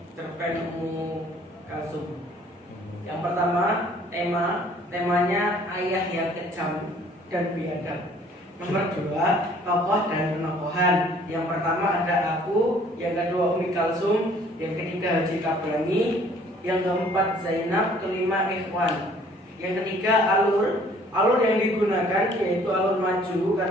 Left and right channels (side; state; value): both; normal; correlation 0.57